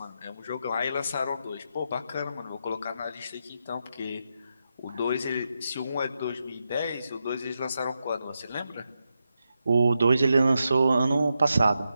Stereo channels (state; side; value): inverted; both; correlation -0.86